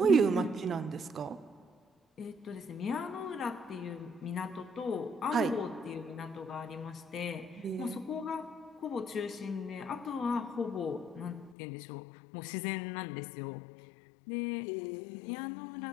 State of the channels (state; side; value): drops out; right; at 11.6 s